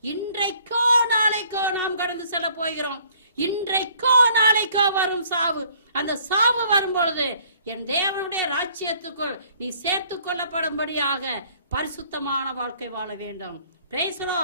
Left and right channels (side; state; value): both; inverted; correlation -0.59